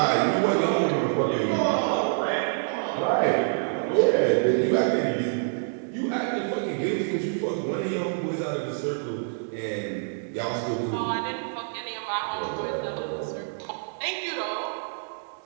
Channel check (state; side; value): silent; left; 60 dB below the other